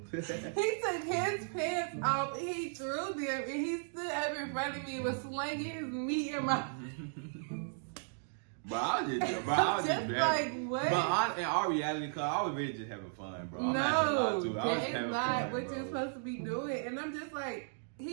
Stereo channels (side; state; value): left; silent; digital silence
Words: took his pants off and he threw them and he stood up in front of me and was slinging his meat in my But I was just like, what? But in our reality, cause I was really just having fun, bro. No, that is not what you're supposed to be doing. And I'm just like,